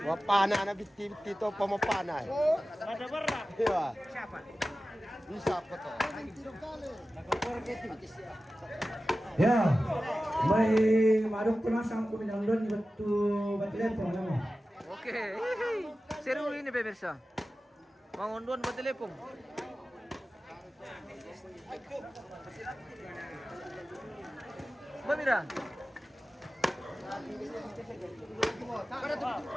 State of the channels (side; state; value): both; normal; correlation 0.95